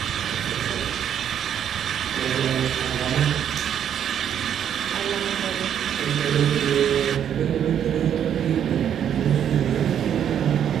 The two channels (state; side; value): quieter; left; 9.3 dB